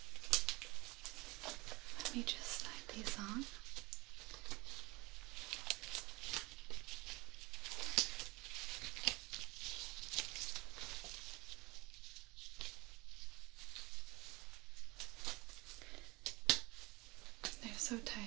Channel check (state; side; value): quieter; left; 23.6 dB